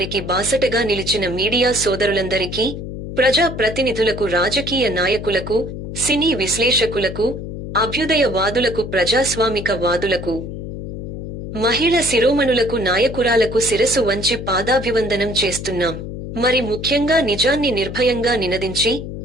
బాసటగా నిలిచిన మీడియా సోదరులందరికీ, ప్రజా ప్రతినిధులకు, రాజకీయ నాయకులకు, సినీ విశ్లేషకులకు, అభ్యుదయ వాదులకు, ప్రజాస్వామిక వాదులకు, మహిళ శిరోమణులకు, నాయకురాలకు శిరసు వంచి పాదాభివందనం చేస్తున్నాం. మరి ముఖ్యంగా నిజాన్ని నిర్భయంగా నినదించి,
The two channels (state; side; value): noise; left; hum, 8 dB below the sound